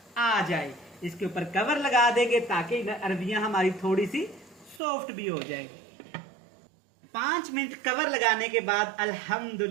आ जाए। इसके ऊपर कवर लगा देंगे ताकि अरबियां हमारी थोड़ी सी सॉफ्ट भी हो जाए। 5 मिनट कवर लगाने के बाद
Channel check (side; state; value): left; drops out; at 4.8 s